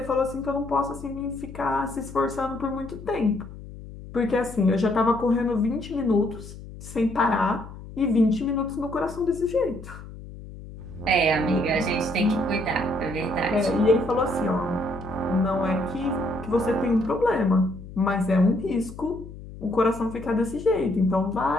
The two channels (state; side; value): noise; left; hum, 14 dB below the sound